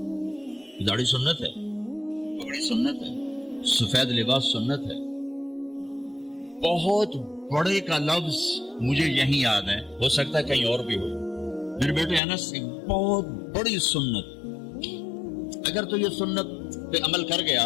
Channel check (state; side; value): drops out; right; at 12.2 s